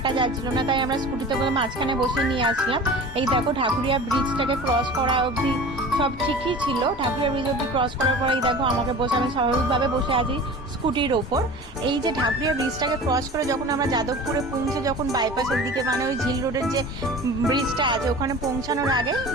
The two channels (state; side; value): normal; both; correlation 0.38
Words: যাচ্ছিল না, তাই আমরা স্কুটিতে করে মাঝখানে বসে নিয়ে আসলাম। এই দেখো ঢাকুরিয়া ব্রিজটাকে ক্রস করা অবধি সব ঠিকই ছিল। ঢাকুরিয়া ব্রিজ অবধি ক্রস করার পরে এই দেখো আমাকে বসে, আমি স্বাভাবিকভাবে বসে আছি স্কুটির ওপর। এই যে ঢাকুরিয়া ব্রিজটাকে ক্রস করে যখন আমরা যাদবপুরে পৌঁছে, যখন বাইপাসের দিকে মানে ওই ঝিল রোডের যে ব্রিজটা আছে ওখানে পৌঁছানোর আগে